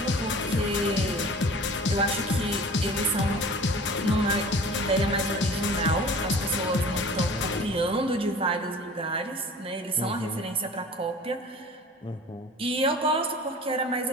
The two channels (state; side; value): normal; both; correlation 0.43